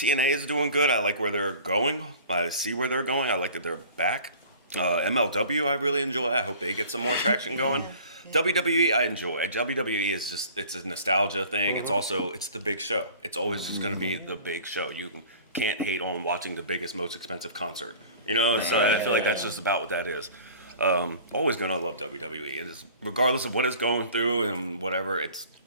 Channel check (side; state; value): both; inverted; correlation -0.45